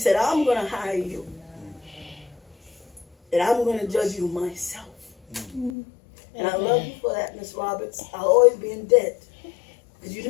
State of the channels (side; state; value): right; drops out; at 5.7 s